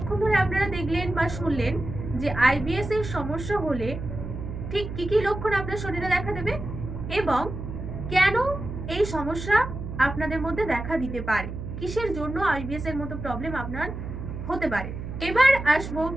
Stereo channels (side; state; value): right; noise; hum, 7 dB below the sound